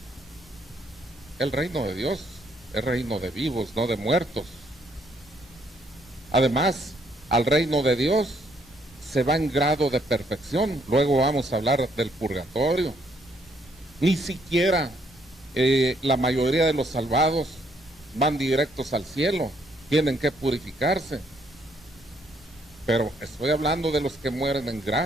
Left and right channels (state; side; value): normal; both; correlation 0.70